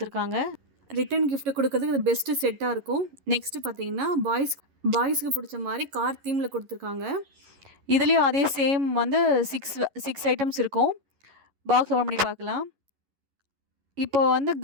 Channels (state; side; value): late; left; 11 ms